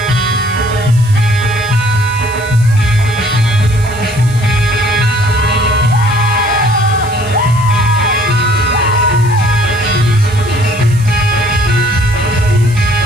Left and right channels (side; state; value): right; noise; hiss, 18 dB below the sound